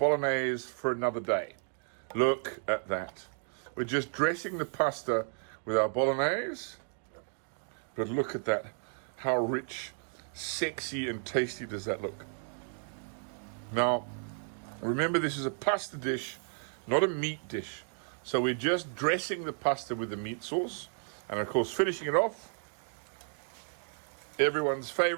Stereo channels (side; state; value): left; silent; 56 dB below the other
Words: for another day. Look at that. We're just dressing the pasta with our bolognese, but look at that. How rich, sexy, and tasty does that look? Now, remember, this is a pasta dish, not a meat dish. So we're just dressing the pasta with the meat sauce, and of course finishing it off, everyone's